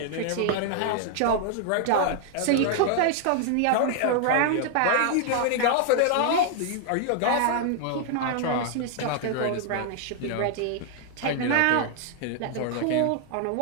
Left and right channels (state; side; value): different; both; correlation 0.00